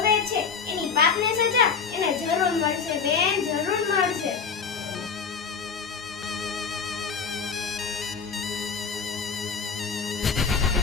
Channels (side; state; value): right; quieter; 5.8 dB